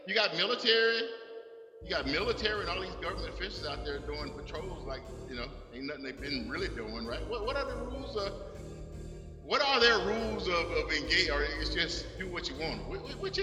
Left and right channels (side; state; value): both; identical; correlation 1.00